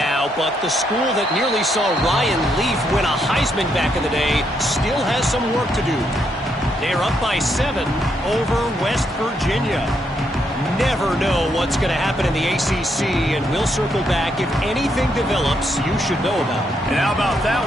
but the school that nearly saw Ryan Leaf win a Heisman back in the day still has some work to do. They're up by 7 over West Virginia. Never know what's going to happen in the ACC, and we'll circle back if anything develops you should know about. And how about that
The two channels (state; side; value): normal; both; correlation 0.77